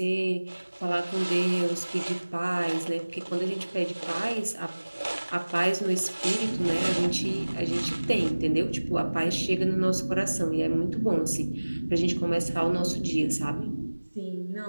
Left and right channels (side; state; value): both; inverted; correlation -1.00